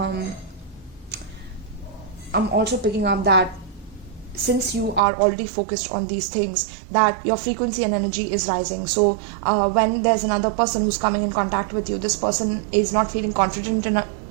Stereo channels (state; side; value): drops out; left; at 5.0 s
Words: also picking up that since you are already focused on these things, that your frequency and energy is rising. So when there's another person who's coming in contact with you, this person is not feeling confident